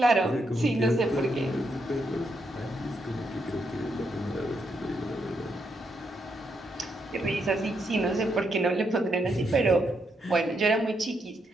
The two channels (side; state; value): both; normal; correlation 0.79